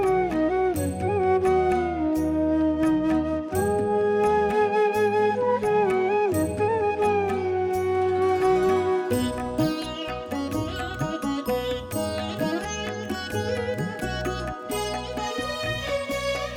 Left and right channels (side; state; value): both; identical; correlation 1.00